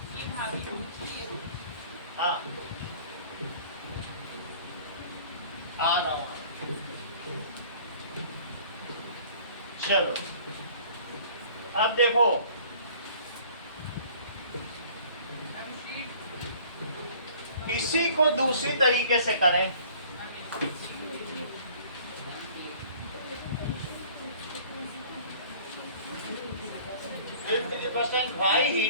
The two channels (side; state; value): both; inverted; correlation -0.51